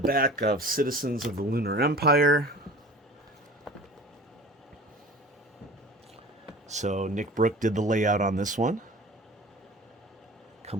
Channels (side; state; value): both; normal; correlation 0.41